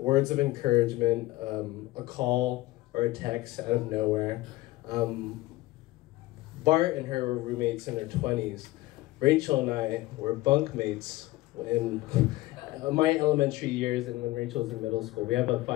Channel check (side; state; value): right; quieter; 18.5 dB